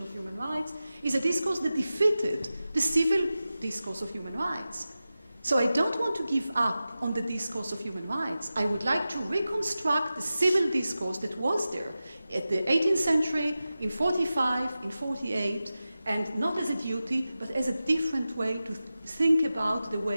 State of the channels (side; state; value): both; inverted; correlation -0.94